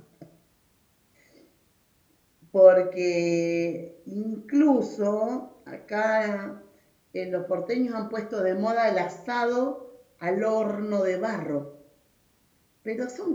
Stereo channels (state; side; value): identical; both; correlation 1.00